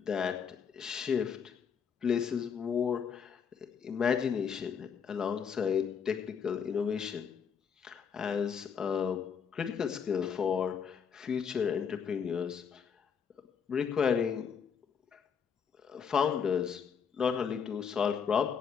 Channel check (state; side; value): quieter; right; 6.9 dB